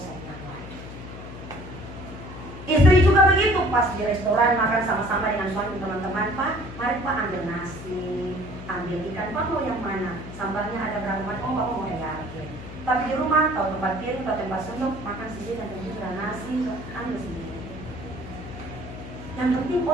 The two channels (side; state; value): left; noise; hum, 12 dB below the sound